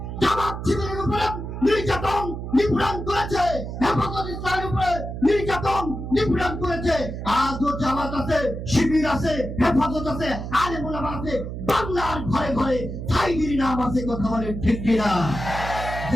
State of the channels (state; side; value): noise; right; hum, 7 dB below the sound